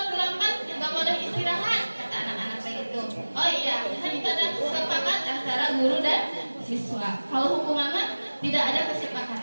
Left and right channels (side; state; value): both; inverted; correlation -1.00